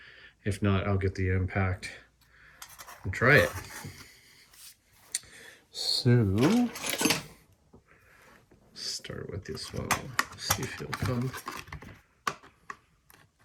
if not, I'll get the impact and try it. So start with this one, see if it'll come.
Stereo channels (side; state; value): both; identical; correlation 1.00